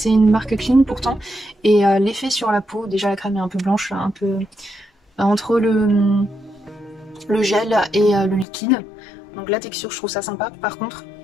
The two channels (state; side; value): drops out; right; at 8.5 s